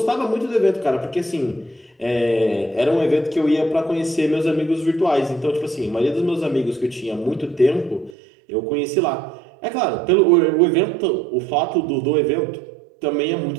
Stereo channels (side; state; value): left; drops out; at 8.2 s